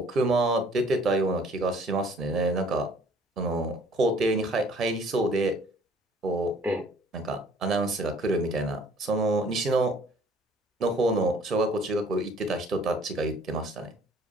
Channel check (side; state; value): both; normal; correlation 0.56